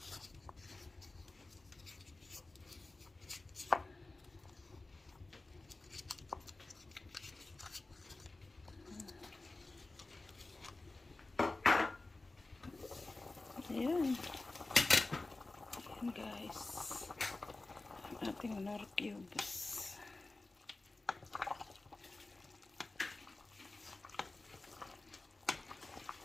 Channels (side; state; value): right; quieter; 3.2 dB